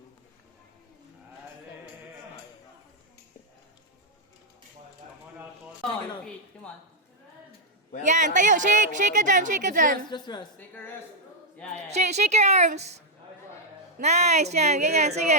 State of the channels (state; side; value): normal; both; correlation -0.03